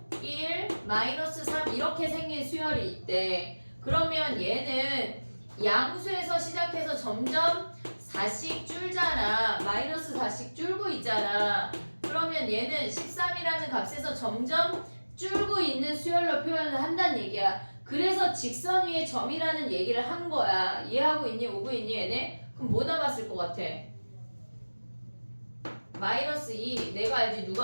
1, 마이너스 3 이렇게 생긴 수열이 있대. 그러면 얘는 양수에서 시작해서 점점 4씩 줄잖아. 마이너스 4씩 줄고 있잖아. 그러면 얘는 13이라는 값에서 점점 줄고 있는 수열로 표현을 한다는 얘기야. 그래서 직선 위에 점이라는 얘기를 한 거야. 이해하고 있니? 오고 있니 얘네? 그럼 뭐 남았을 것 같아? 마이너스 2 내가 알지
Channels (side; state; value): both; inverted; correlation -1.00